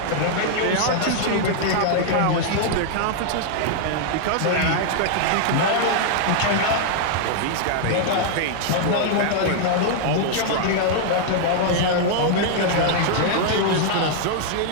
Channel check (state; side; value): different; both; correlation -0.01